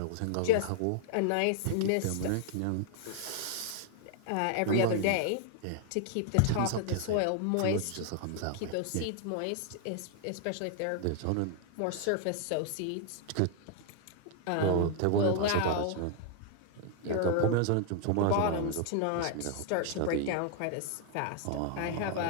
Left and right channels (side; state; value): both; different; correlation 0.00